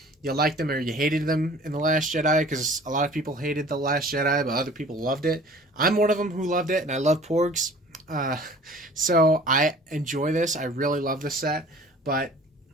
you liked them or you hated them in The Last Jedi, because a lot of people hated The Last Jedi, but other people loved it. I'm one of them who loved it, and I love Porgs. So I enjoy this. I really love this set. But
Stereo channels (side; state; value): both; normal; correlation 0.48